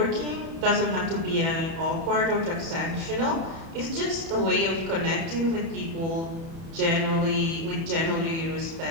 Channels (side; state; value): left; late; 30 ms